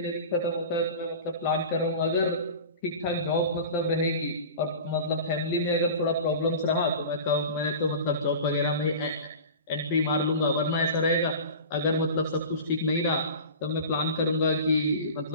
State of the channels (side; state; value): both; inverted; correlation -0.35